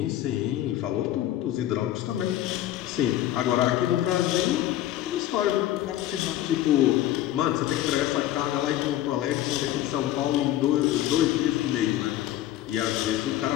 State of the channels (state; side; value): quieter; right; 13.4 dB